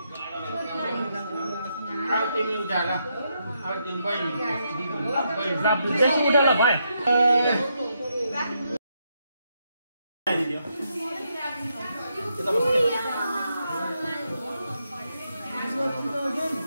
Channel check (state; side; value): inverted; both; correlation -0.80